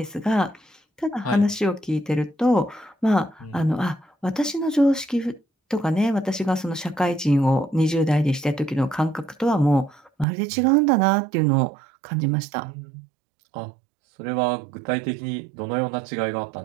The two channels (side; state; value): left; drops out; at 10.2 s